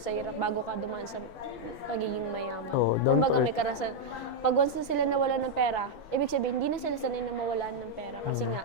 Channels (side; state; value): right; late; 6.0 ms